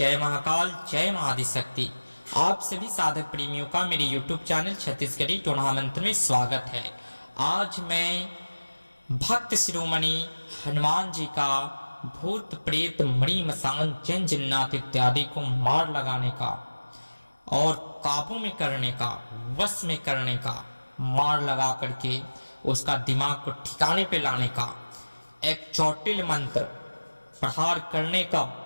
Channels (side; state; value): both; inverted; correlation -1.00